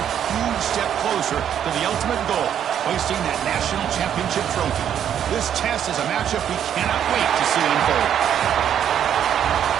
huge step closer to the ultimate goal, hoisting that national championship trophy. This test is a matchup we cannot wait to see unfold.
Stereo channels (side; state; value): left; quieter; 9.4 dB